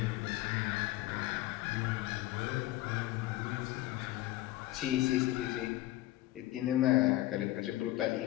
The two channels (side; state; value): right; quieter; 16.5 dB